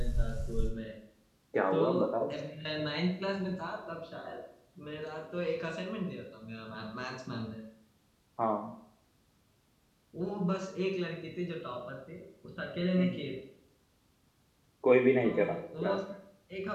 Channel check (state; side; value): identical; both; correlation 1.00